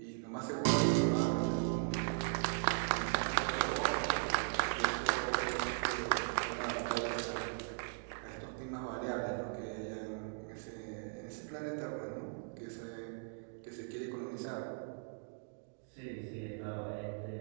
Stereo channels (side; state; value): left; silent; digital silence